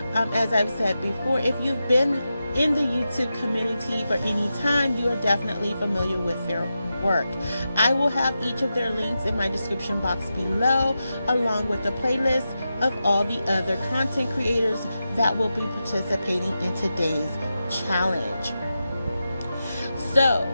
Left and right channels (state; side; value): inverted; both; correlation -0.90